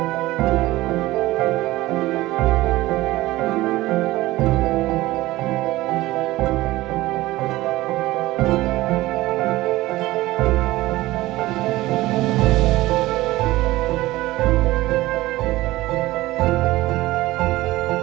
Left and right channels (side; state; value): left; quieter; 18.0 dB